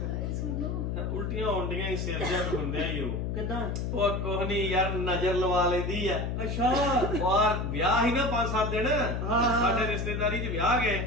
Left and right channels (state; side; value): noise; left; hum, 2 dB below the sound